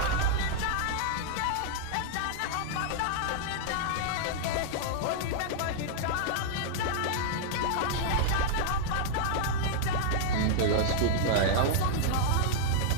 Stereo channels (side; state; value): both; different; correlation -0.01